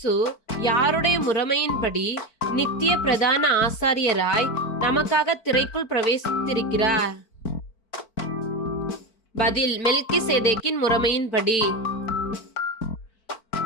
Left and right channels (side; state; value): right; late; 4.5 ms